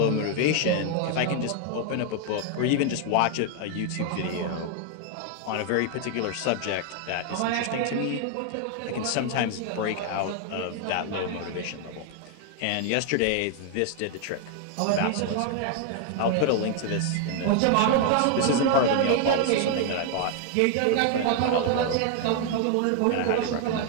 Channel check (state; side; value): different; both; correlation 0.00